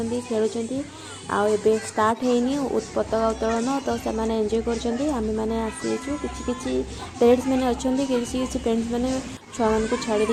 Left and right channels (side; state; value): both; identical; correlation 1.00